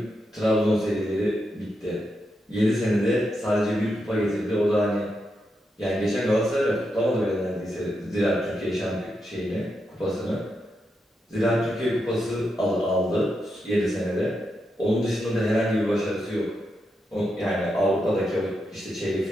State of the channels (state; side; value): normal; both; correlation 0.84